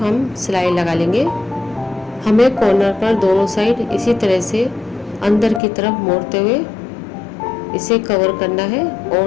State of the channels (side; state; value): right; drops out; at 5.6 s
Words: हम सिलाई लगा लेंगे। हमें कॉर्नर पर दोनों साइड इसी तरह से अंदर की तरफ मोड़ते हुए इसे कवर करना है